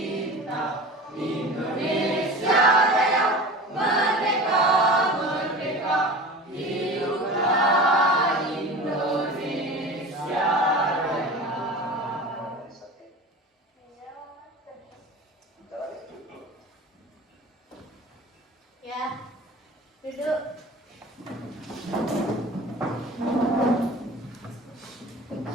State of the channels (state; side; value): normal; both; correlation 0.35